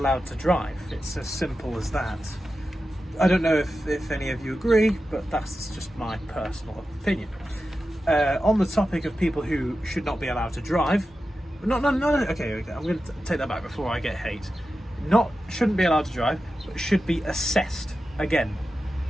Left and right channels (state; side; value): normal; both; correlation 0.92